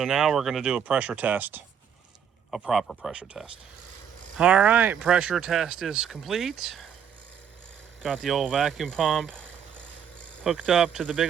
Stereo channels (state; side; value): quieter; left; 8.0 dB